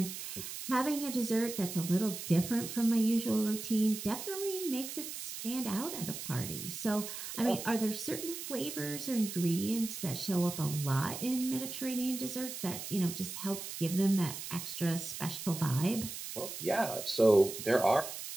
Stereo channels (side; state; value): right; noise; hiss, 8 dB below the sound